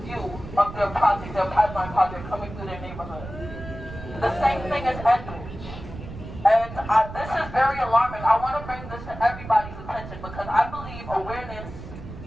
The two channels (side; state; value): right; noise; rumble, 12 dB below the sound